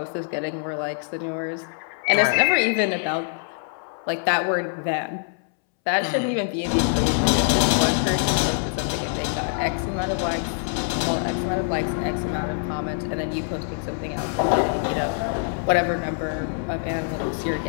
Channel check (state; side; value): silent; right; 62 dB below the other